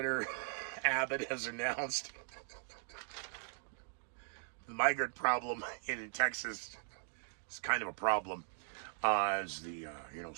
Abbott has announced the migrant problem in Texas is kind of a problem. As the,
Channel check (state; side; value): silent; left; digital silence